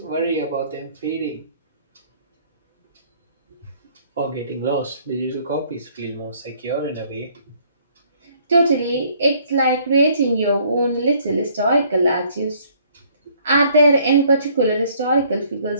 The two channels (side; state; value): both; inverted; correlation -0.61